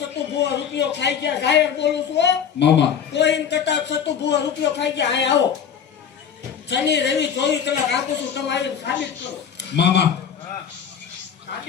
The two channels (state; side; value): quieter; right; 7.8 dB